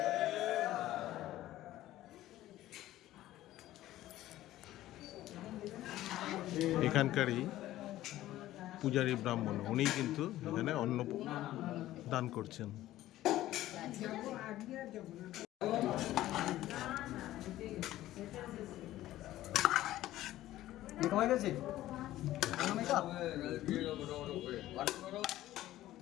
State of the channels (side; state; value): right; quieter; 14.7 dB